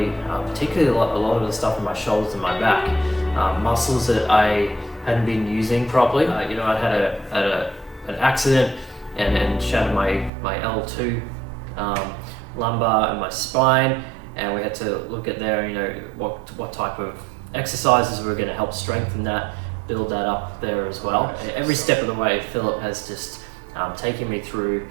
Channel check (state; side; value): drops out; left; at 10.3 s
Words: particularly a lot of the stuff in my shoulders and my back, muscles that I hadn't been using properly. I had an accident and shattered my L2 lumbar and my spine, and we had to look at there, what type of exercises were going to help strengthen that, build that up there as well. Every step of the way, Philip has just taken me through